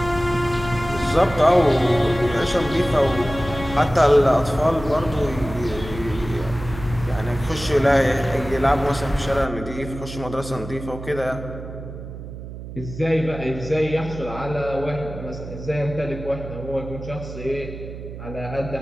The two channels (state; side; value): noise; right; hum, 11 dB below the sound